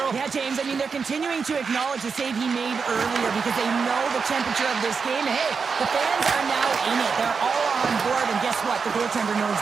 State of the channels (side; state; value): left; quieter; 5.4 dB